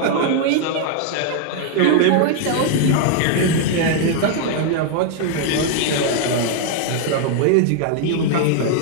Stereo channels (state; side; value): different; both; correlation 0.00